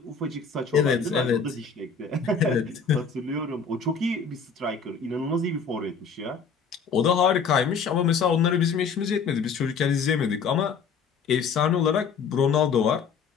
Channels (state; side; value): quieter; right; 5.6 dB